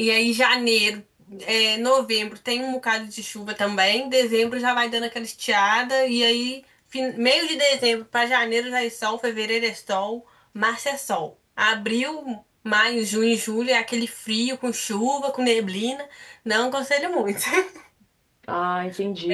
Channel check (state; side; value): identical; both; correlation 1.00